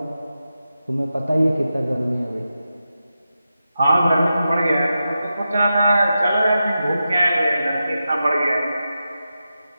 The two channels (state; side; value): inverted; both; correlation -0.90